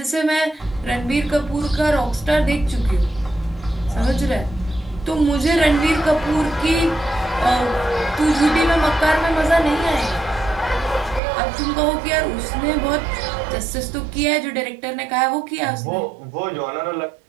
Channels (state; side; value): drops out; left; at 11.2 s